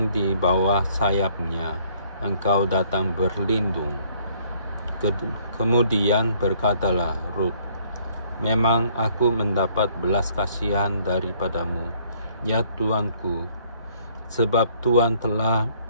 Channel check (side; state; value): both; inverted; correlation -0.62